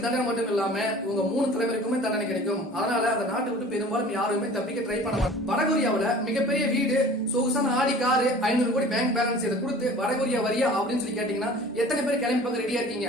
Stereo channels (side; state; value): both; normal; correlation 0.44